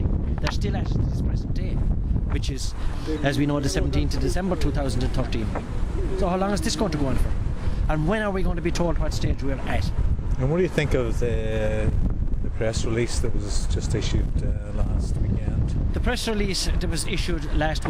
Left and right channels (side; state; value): both; identical; correlation 1.00